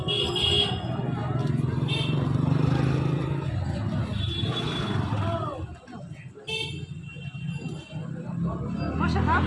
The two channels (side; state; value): both; identical; correlation 1.00